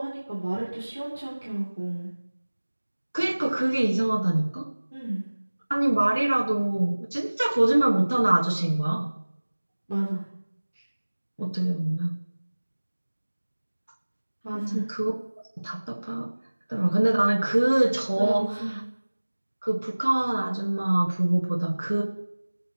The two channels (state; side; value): inverted; both; correlation -1.00